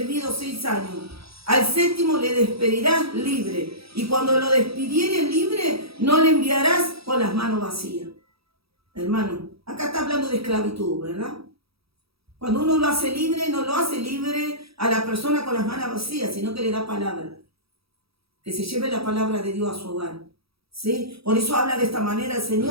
6 años, al 7º le despedirás libre, y cuando lo despidieres libre, no le enviarás con las manos vacías. Hermano, acá está hablando de esclavitud, ¿verdad? Cuando uno lo hace libre, no lo hace libre a la persona con las manos vacías, sino que le da palabra. Que se lleve la palabra de Dios a su hogar. ¿Sí? Por eso habla de esta manera el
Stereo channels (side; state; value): left; late; 0.77 ms